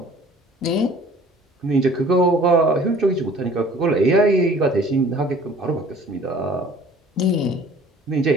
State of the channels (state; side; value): normal; both; correlation 0.50